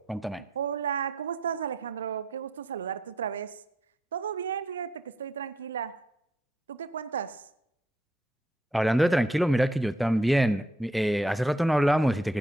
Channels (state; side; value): normal; both; correlation 0.74